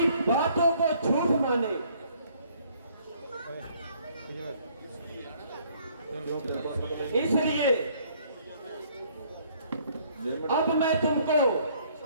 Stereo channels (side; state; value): both; inverted; correlation -0.62